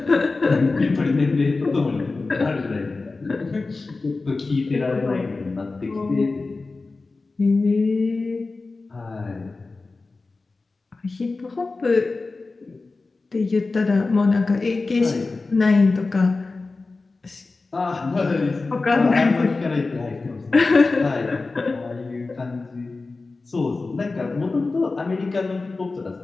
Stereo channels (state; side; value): quieter; right; 3.7 dB